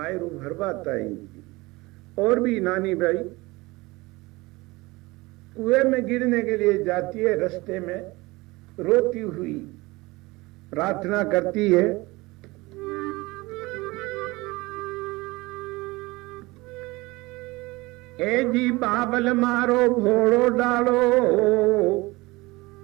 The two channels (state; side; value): quieter; left; 22.2 dB